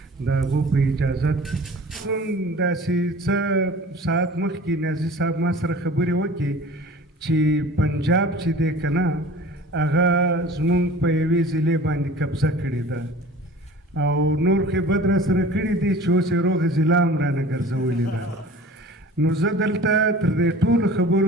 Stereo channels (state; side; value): normal; both; correlation 0.43